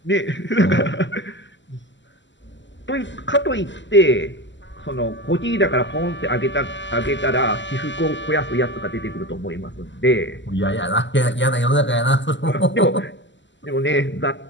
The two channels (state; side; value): late; right; 0.54 ms